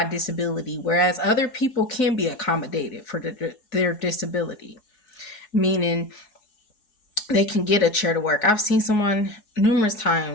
disability, whereas other people can be accommodated for their disability. Meaning they can get a chair to work. I've seen someone numerous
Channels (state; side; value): late; right; 4.7 ms